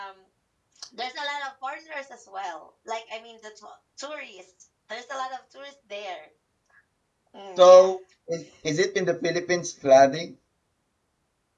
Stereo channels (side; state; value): both; identical; correlation 1.00